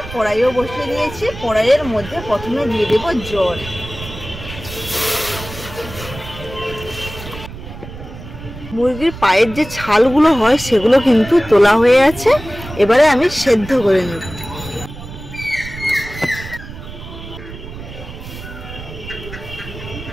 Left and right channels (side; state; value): right; noise; rumble, 12 dB below the sound